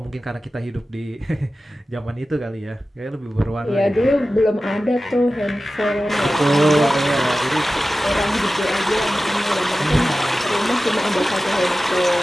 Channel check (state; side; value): normal; both; correlation 0.95